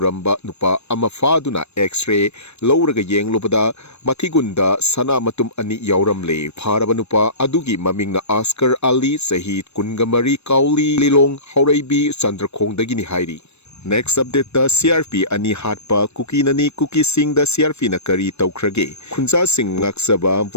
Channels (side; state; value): right; late; 0.81 ms